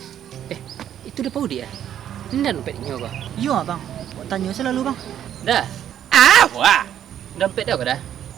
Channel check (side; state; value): left; quieter; 10.3 dB